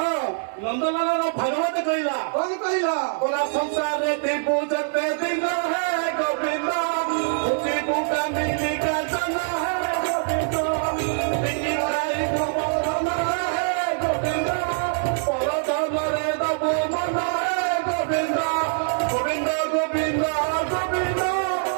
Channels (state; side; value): silent; left; 60 dB below the other